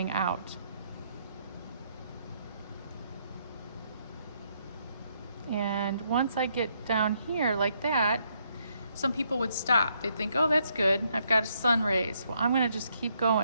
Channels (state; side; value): inverted; both; correlation -0.73